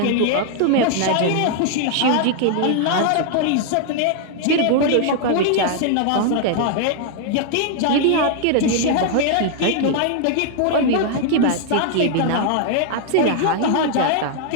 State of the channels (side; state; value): both; different; correlation 0.00